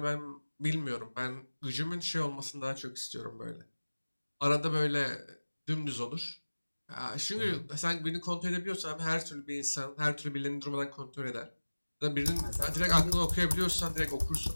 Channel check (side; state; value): both; inverted; correlation -1.00